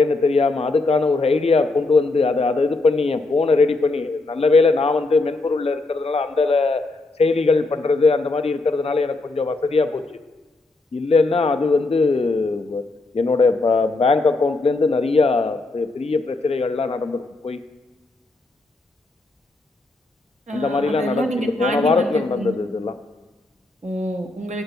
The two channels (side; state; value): right; quieter; 3.2 dB